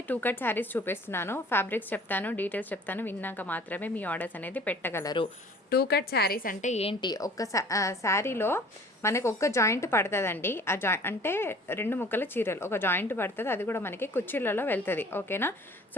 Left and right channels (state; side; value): normal; both; correlation 0.49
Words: 2 cut saris చూపిస్తున్నాను. Fabrics చెప్తాను, details చెప్తాను, విన్నాక మాత్రమే మీ ఆర్డర్స్ అనేది పెట్టగలరు. 2 కట్ శారీస్ అంటే ఏంటి? ఒక శారీలో మనకు ఒక్క జాయింట్ పడుతుందండి. ఆ అంటే 2 ముక్కల చీరలు ఒక జాయింట్ పడుతుంది, అది కూడా మనకి కుర్చీలలో వెళ్తుంది. ఓకేనా?